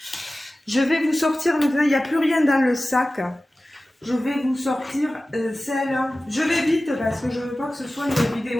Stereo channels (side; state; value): both; normal; correlation 0.96